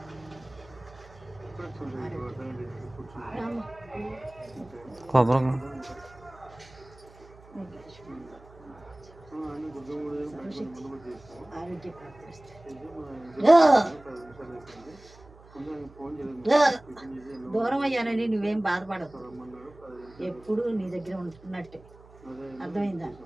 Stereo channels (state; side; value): noise; right; hum, 23 dB below the sound